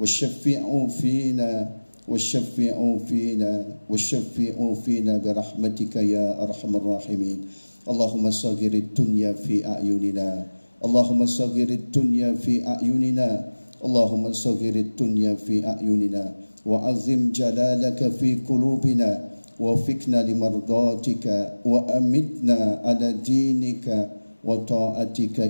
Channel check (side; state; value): both; inverted; correlation -1.00